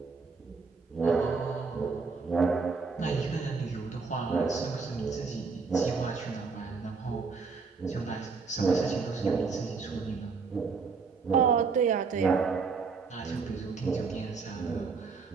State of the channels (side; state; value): left; quieter; 4.8 dB